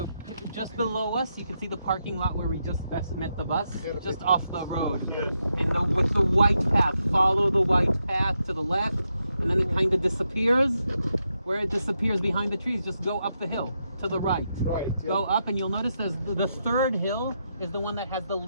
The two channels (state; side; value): inverted; both; correlation -0.83